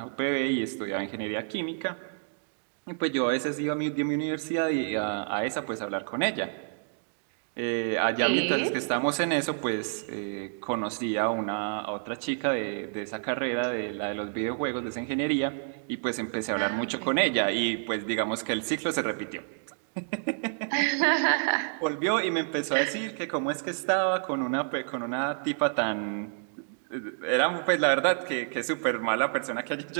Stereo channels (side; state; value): left; silent; digital silence